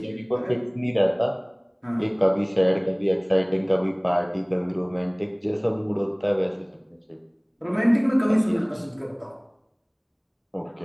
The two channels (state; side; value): identical; both; correlation 1.00